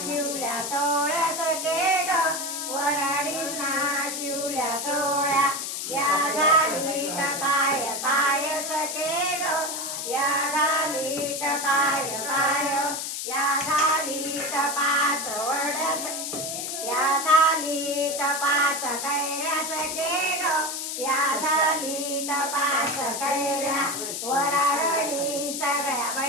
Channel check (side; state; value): left; noise; hiss, 4 dB below the sound